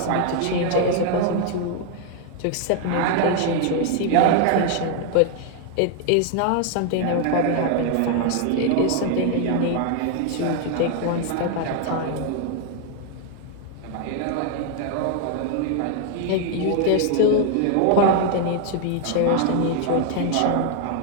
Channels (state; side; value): different; both; correlation 0.00